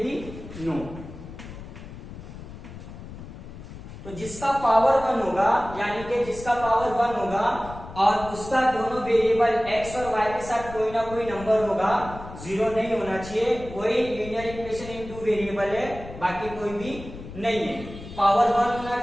भी नो। तो जिसका पावर 1 होगा, यानी कि जिसका पावर 1 होगा और उसका दोनों वेरिएबल x और y के साथ कोई ना कोई नंबर होगा, 0 नहीं होना चाहिए, वही लीनियर इक्वेशन इन 2 वेरिएबल है, बाकी कोई भी नहीं है। पावर 1 होना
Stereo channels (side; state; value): left; noise; rumble, 13 dB below the sound